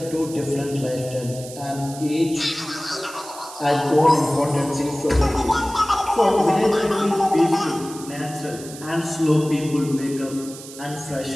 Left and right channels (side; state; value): right; noise; hiss, 15 dB below the sound